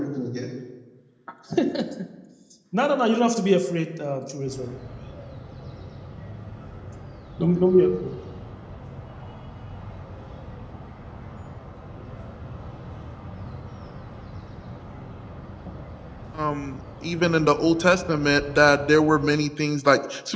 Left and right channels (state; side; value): identical; both; correlation 1.00